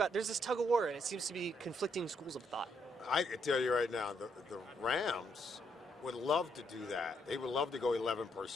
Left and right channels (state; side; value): normal; both; correlation 0.74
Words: There's this tug-of-war, and it seems to be conflicting schools of thought. I can tell you right now, the Rams would love to do that. They would love to go 11